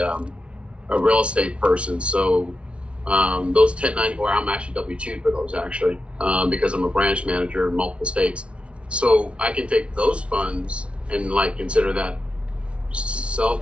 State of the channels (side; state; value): left; late; 0.060 ms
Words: real estate person. So those 1094, I'm actually W-2 for those actually, because I'm a branch manager in multiple states. So I can take those funds and consider that